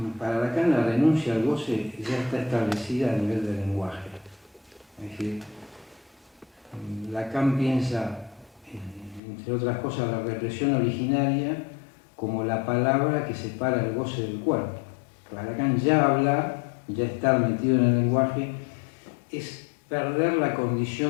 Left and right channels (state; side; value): drops out; right; at 9.2 s